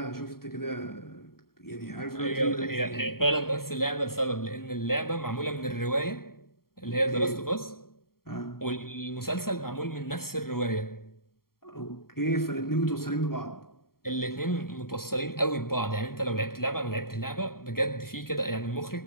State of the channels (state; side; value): late; right; 0.93 ms